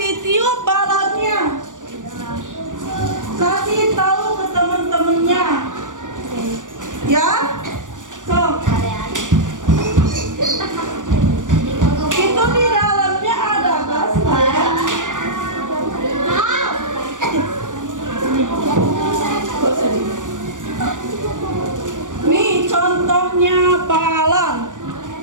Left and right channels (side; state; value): left; late; 0.87 ms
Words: balonnya. Kasih tahu ke teman-temannya. Ya? Itu di dalamnya ada gas nggak ya? Nih contohnya balon.